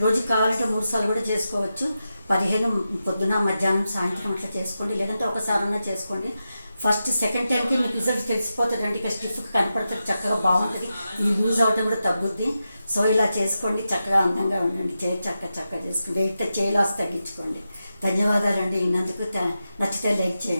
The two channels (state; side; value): inverted; both; correlation -0.90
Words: రోజుకి కావాలంటే 3 సార్లు కూడా చేసుకోవచ్చు. 15 పొద్దున మధ్యాహ్నం సాయంత్రం అట్లా చేసుకోండి. లేదంటే ఒకసారన్నా చేసుకోండి. సెకండ్ టైంకి మీకు రిజల్ట్ తెలిసిపోతుంది అండి. ఇక స్టిఫ్గా కనపడుతుంది, చక్కగా బాగుంటుంది. ఈ లూజ్ అవటం కూడా తగ్గుద్ది. సో ఇలా చేసుకోండి. చక్కగా అందంగా ఉండండి. చక్కగా చేసుకోండి. చేయి లాస్ తగ్గించుకోండి. ధన్యవాదాలండి. ఇన్నందుకు నచ్చితే లైక్